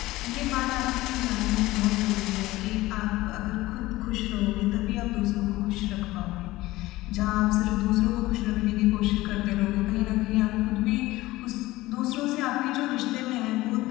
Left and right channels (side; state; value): right; quieter; 18.2 dB